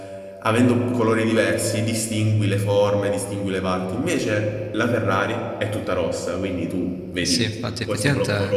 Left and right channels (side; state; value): both; identical; correlation 1.00